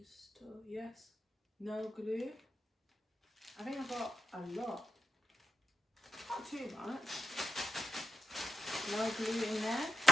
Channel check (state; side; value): normal; both; correlation 0.86